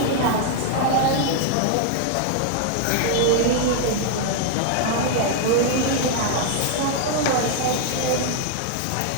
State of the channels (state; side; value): different; both; correlation 0.00